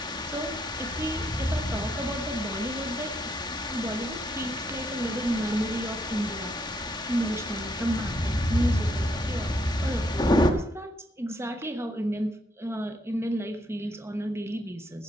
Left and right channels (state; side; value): normal; both; correlation 0.74